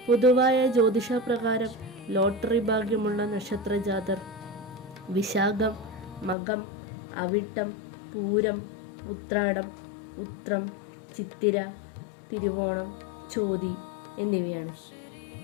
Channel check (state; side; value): drops out; right; at 6.4 s